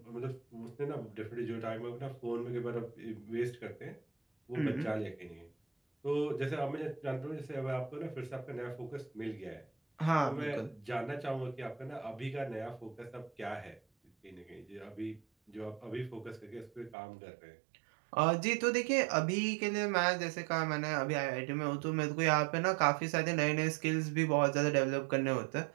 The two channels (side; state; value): left; drops out; at 16.9 s